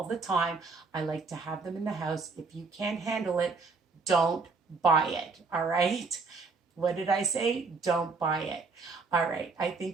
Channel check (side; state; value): left; quieter; 4.4 dB